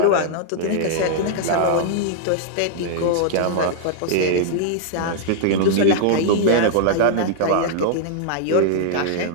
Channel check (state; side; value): different; both; correlation -0.01